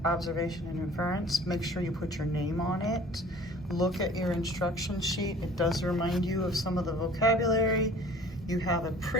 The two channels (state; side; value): normal; both; correlation 0.48